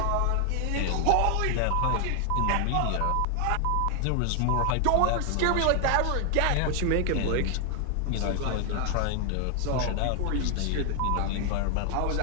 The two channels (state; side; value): different; both; correlation 0.00